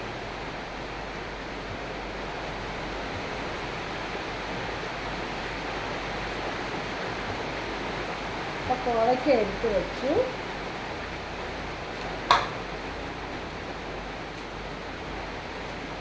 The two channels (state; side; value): identical; both; correlation 1.00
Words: അപ്പോൾ കോവയ്ക്ക എടുത്ത് വെച്ചു.